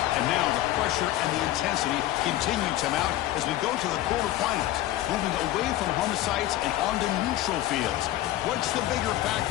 and now the pressure and the intensity continue to mount as we go to the quarterfinals, moving away from home sites and onto neutral fields. What's the bigger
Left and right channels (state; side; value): quieter; right; 14.6 dB